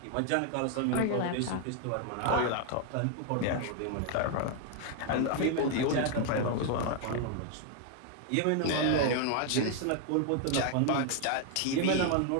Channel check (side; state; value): both; different; correlation 0.00